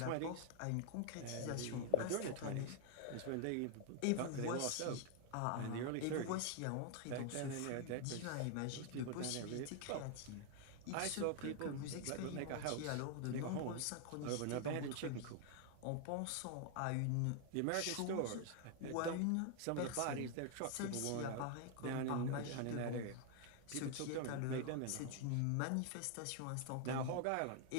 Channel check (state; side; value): different; both; correlation 0.00